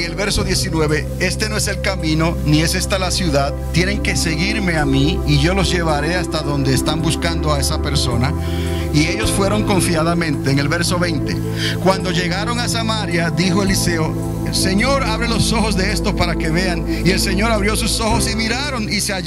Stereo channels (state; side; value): identical; both; correlation 1.00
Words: el verso 19: este no es el camino, ni es esta la ciudad. Tienen que seguirme a mí y yo los llevaré hasta donde están buscando a esa persona. Y ellos fueron confiadamente. En el verso 20: cuando llegaron a Samaria, dijo Eliseo: el Señor, abre los ojos de estos para que vean. Y el Señor abrió sus ojos y miraron y se